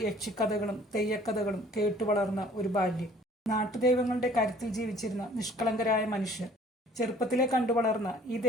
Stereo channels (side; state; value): both; normal; correlation 0.54